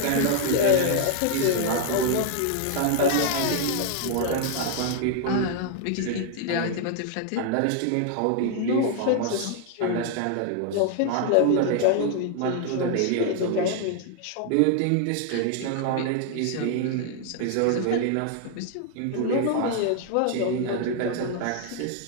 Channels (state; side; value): different; both; correlation 0.00